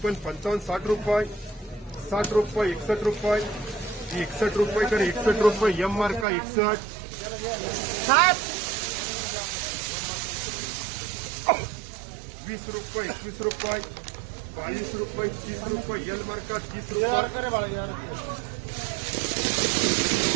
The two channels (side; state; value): left; drops out; at 6.2 s